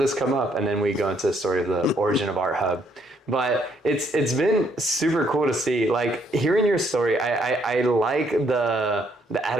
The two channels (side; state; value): both; normal; correlation 0.70